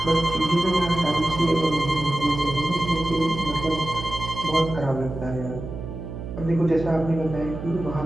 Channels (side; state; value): right; noise; hum, 9 dB below the sound